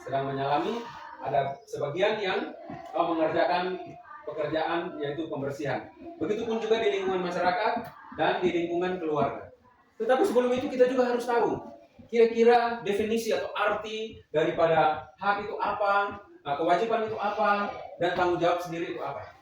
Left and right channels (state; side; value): identical; both; correlation 1.00